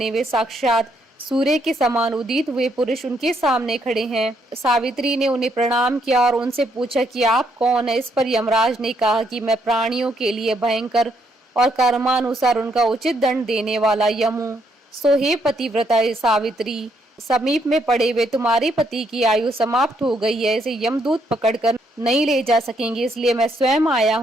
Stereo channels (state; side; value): normal; both; correlation 0.73